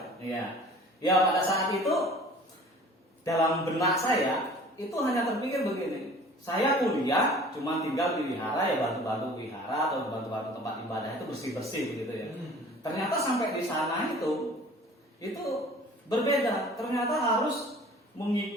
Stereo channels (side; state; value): both; normal; correlation 0.47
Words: Iya. Ya pada saat itu dalam benak saya itu hanya terpikir begini. Saya kuliah cuma tinggal di wihara ya, bantu-bantu wihara atau bantu-bantu tempat ibadah itu bersih-bersih begitu ya. Ternyata sampai di sana itu berbeda. Ternyata harus